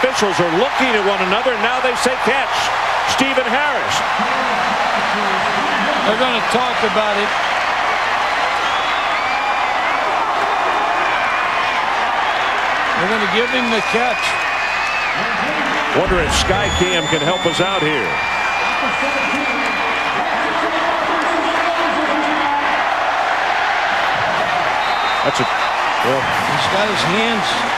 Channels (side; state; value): both; identical; correlation 1.00